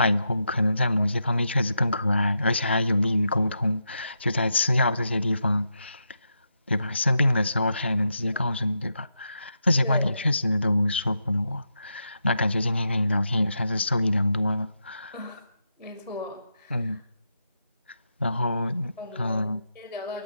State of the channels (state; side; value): inverted; both; correlation -0.84